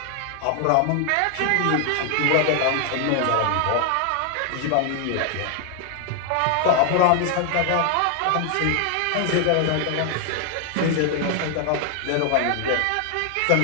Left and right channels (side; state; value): both; different; correlation 0.00